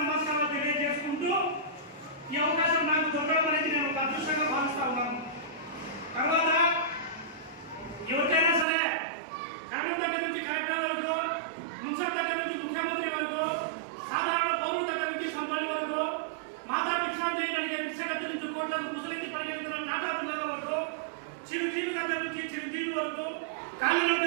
నమస్కారాలు తెలియజేసుకుంటూ ఈ అవకాశం నాకు దొరకడం అనేది నేను ఒక అదృష్టంగా భావిస్తా ఉన్నాను. తర్వాత ఎవరికైనా సరే కరణం దగ్గర నుంచి కలెక్టర్ వరకు, మున్సిపల్ దగ్గర నుంచి ముఖ్యమంత్రి వరకు, సాధారణ పౌరుల దగ్గర నుంచి కంపెనీ వరకు, మాతా భిక్షాంతి కలిగే భిక్షగతి నుంచి కోట్లకు ముసలించి పరిగెత్తున్న నాటాల వరకు, చిరుజీవి దగ్గర నుంచి చిరుజీవి వరకు,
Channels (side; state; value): left; drops out; at 8.7 s